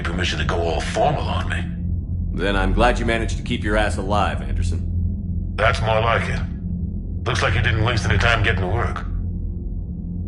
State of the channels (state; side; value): identical; both; correlation 1.00